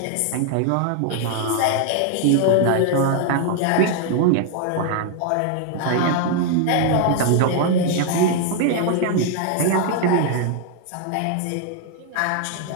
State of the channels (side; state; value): both; different; correlation 0.00